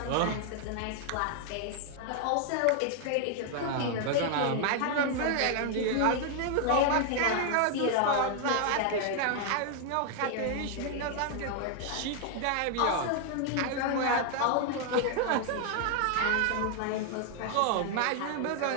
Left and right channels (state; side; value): different; both; correlation 0.00